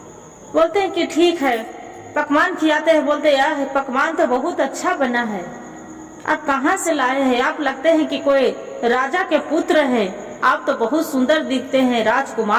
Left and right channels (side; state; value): both; identical; correlation 1.00